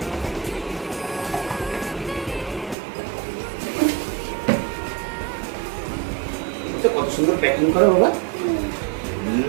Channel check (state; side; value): drops out; left; at 2.8 s